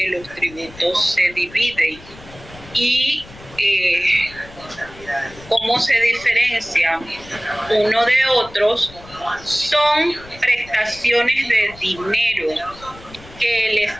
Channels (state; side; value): noise; left; rumble, 20 dB below the sound